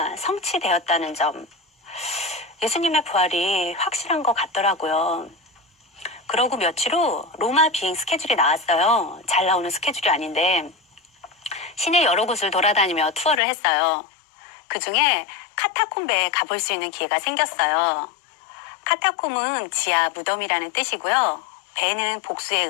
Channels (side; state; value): right; drops out; at 13.4 s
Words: 성취되었다는 점. 예수님의 부활이 확실한 것 같더라고요. 그러고 며칠 후 로마 비행 스케줄이 나왔어요. 잘 나오는 스케줄이 아닌데 시내 여러 곳을 돌아다니며 투어를 했어요. 그중에 카타콤베에 가볼 수 있는 기회가 생겼어요. 카타콤은 지하 무덤이라는 뜻이고요. 베는 복수의